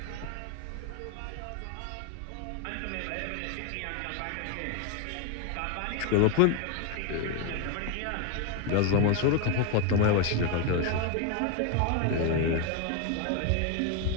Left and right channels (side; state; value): both; different; correlation 0.01